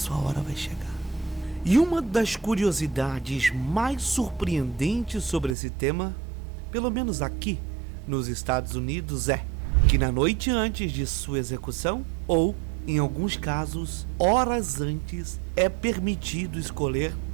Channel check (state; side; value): drops out; left; at 5.6 s